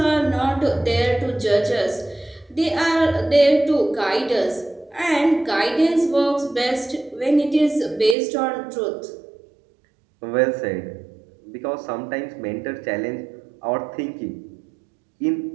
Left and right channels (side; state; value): left; drops out; at 8.2 s